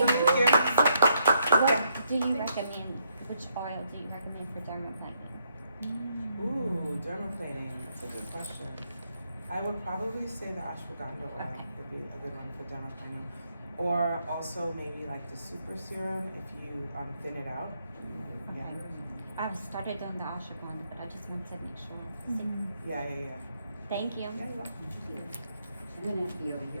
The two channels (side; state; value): both; inverted; correlation -0.76